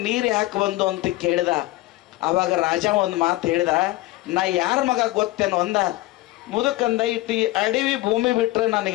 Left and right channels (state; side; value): quieter; right; 18.0 dB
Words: ನೀರು ಯಾಕೆ ಬಂದು ಅಂತ ಕೇಳಿದ ಅವಾಗ ರಾಜ ಒಂದು ಮಾತು ಹೇಳಿದ ನಾ ಯಾರ ಮಗ ಗೊತ್ತೇನೋ ಅಂದ ಮುದುಕಂದ ಇಟ್ಟು ಅಡವಿ ಭೂಮಿ ಬಿಟ್ರೆ